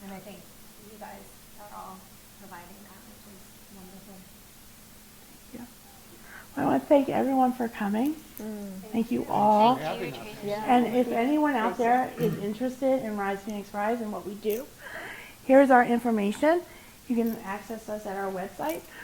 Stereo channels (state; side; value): identical; both; correlation 1.00